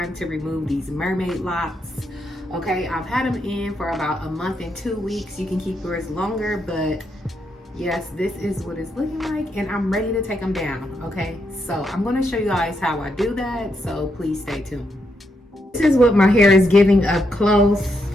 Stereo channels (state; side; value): normal; both; correlation 0.80